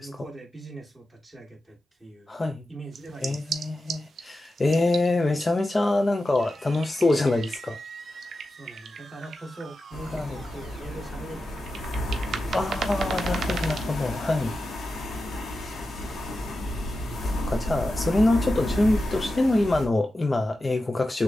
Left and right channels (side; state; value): both; normal; correlation 0.91